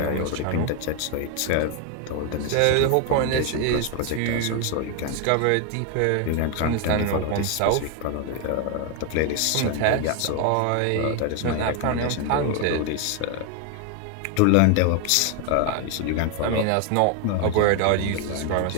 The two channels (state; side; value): different; both; correlation 0.01